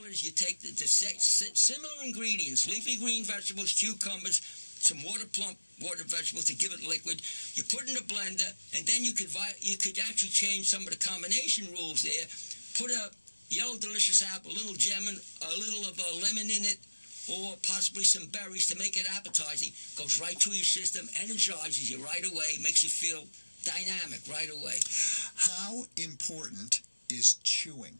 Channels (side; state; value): both; inverted; correlation -1.00